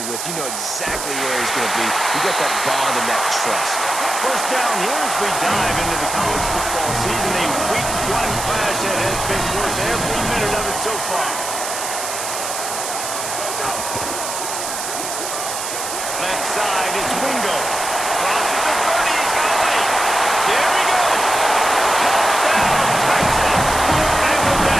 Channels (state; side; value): noise; right; hiss, 5 dB below the sound